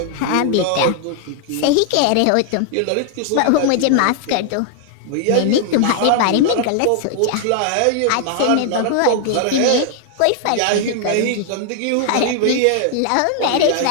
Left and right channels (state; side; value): different; both; correlation 0.00